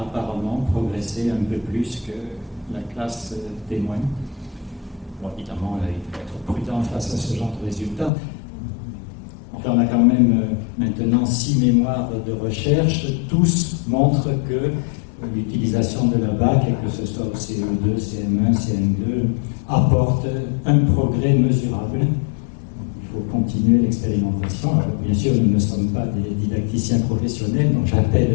apparemment progressé un peu plus que la classe témoin. Bon, évidemment, il faut être prudent face à ce genre de résultats. Enfin, on a quand même maintenant 6 mémoires de recherche. Tous montrent que l'utilisation de la BAC, et que ce soit au CE2, CM1, CM2, apporte un progrès mesurable. Il faut continuer l'expérimentation. Alors, bien sûr, nous ne sommes pas des didacticiens professionnels, donc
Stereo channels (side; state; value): right; drops out; at 8.1 s